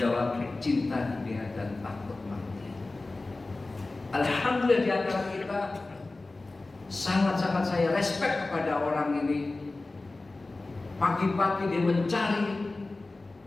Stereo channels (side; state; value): right; quieter; 3.2 dB